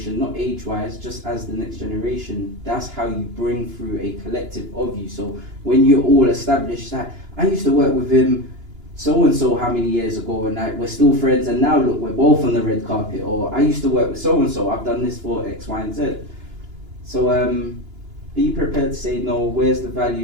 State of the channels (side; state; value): left; late; 2.9 ms